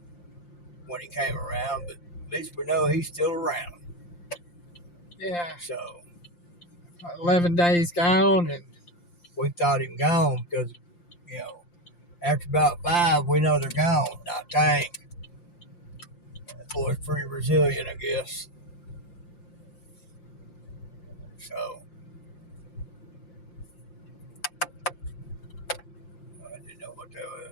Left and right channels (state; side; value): late; right; 5.8 ms